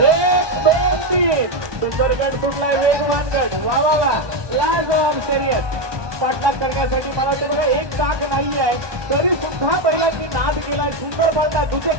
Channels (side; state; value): left; late; 1.2 ms